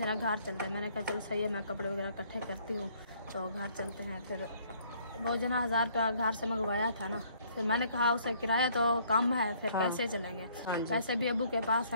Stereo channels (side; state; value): both; inverted; correlation -0.62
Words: घर चलते हैं। मैंने कहा चलो सही है, मैं कपड़े वगैरह इकट्ठे करती हूँ तो घर चलते हैं। फिर वो जना 1000 रुपया घर से मंगवाया था ना, फिर मैंने कहा उसे किराया तो कम है, फिर कैसे चलेंगे? पैसे भी अबू के पास